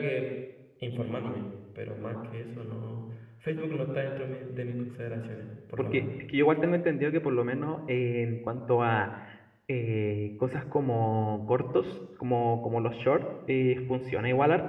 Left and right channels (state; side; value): identical; both; correlation 1.00